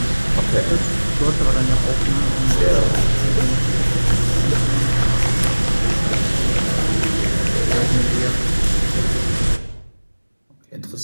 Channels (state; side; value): inverted; both; correlation -1.00